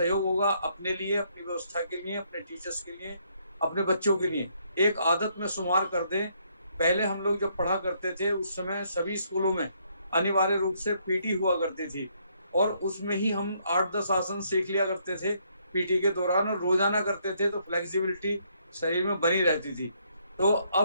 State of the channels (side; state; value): both; inverted; correlation -0.71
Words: होगा अपने लिए, अपनी व्यवस्था के लिए, अपने टीचर्स के लिए, अपने बच्चों के लिए। एक आदत में शुमार कर दें। पहले हम लोग जब पढ़ा करते थे उस समय सभी स्कूलों में अनिवार्य रूप से पीटी हुआ करती थी और उसमें ही हम 8-10 आसन सीख लिया करते थे पीटी के दौरान और रोजाना करते थे, तो फ्लेक्सिबिलिटी शरीर में बनी रहती थी। तो